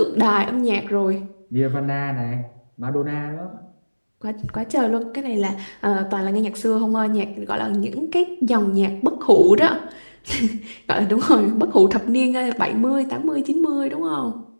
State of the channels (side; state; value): both; inverted; correlation -1.00